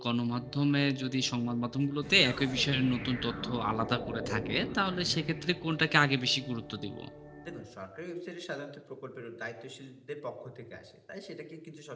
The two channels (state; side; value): identical; both; correlation 1.00